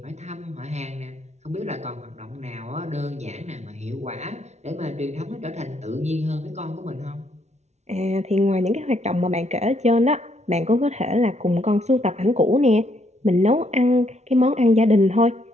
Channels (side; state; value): left; late; 0.32 ms